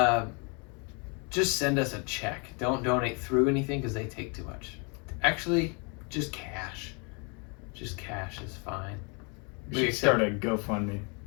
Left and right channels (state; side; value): quieter; right; 34.5 dB